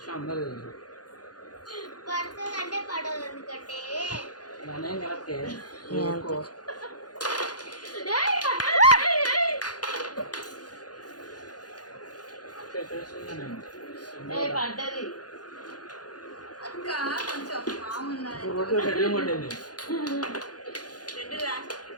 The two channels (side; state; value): right; late; 0.69 ms